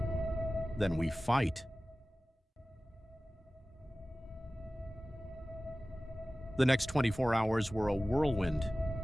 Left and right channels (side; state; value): both; normal; correlation 0.97